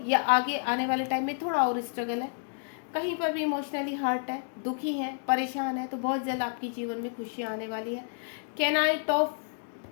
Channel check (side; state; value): right; silent; digital silence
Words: या आगे आने वाले टाइम में थोड़ा और स्ट्रगल है, कहीं पर भी इमोशनली हर्ट है, दुखी हैं, परेशान है, तो बहुत जल्द आपके जीवन में खुशियाँ आने वाली है। कैनाइट ऑफ